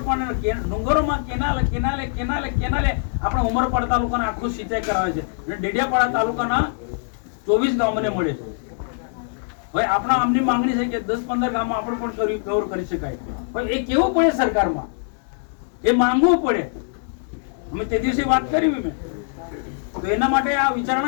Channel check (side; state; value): right; silent; digital silence